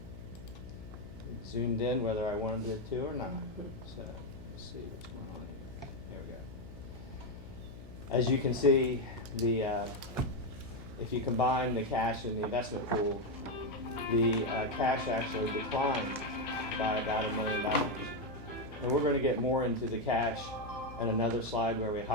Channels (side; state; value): left; noise; hum, 15 dB below the sound